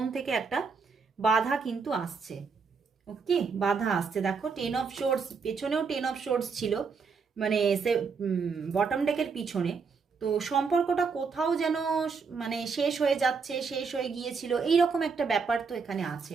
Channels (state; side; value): quieter; left; 5.3 dB